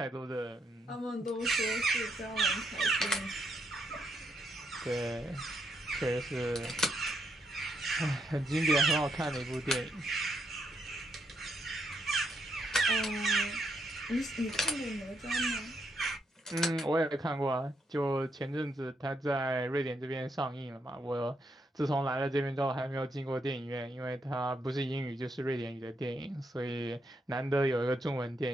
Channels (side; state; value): both; normal; correlation 0.78